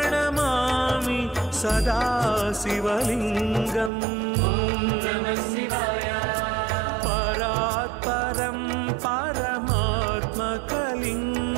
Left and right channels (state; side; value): drops out; left; at 3.9 s